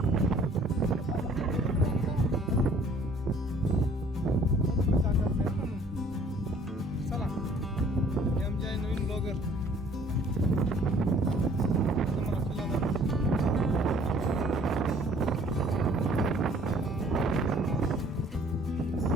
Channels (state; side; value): normal; both; correlation 0.56